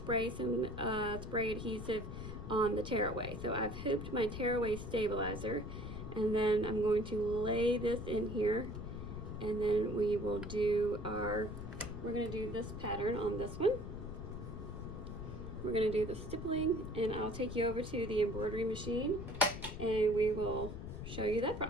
some spray adhesive on the tearaway. So I've hooped my tearaway stabilizer, and then I'm going to lay this in here and then we will do we're gonna do this pattern on this one. We're gonna do the stippling, and I'll take you over to the embroidery machine and we will show you that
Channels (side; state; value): left; noise; rumble, 8 dB below the sound